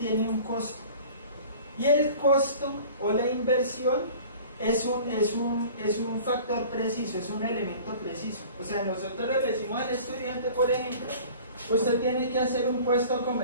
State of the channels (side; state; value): both; inverted; correlation -0.44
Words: un costo. Y el costo o la inversión es un factor preciso, es un elemento preciso. O sea, nosotros le decimos al estudiante, por ejemplo, usted tiene que hacer un puesto